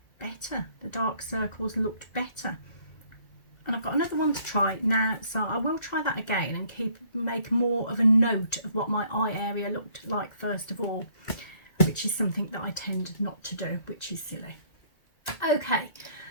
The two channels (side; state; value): right; late; 2.0 ms